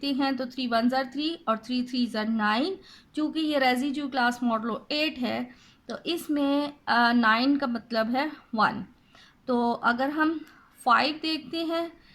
हैं तो 3 1 ज़ा 3 और 3 3 ज़ा 9। चूँकि ये रेसिड्यू क्लास मॉडलो 8 है, तो इसमें 9 का मतलब है 1। तो अगर हम 5 देखते हैं,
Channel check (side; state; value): both; identical; correlation 1.00